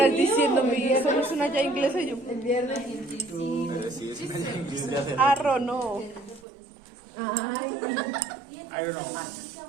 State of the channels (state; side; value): drops out; left; at 6.4 s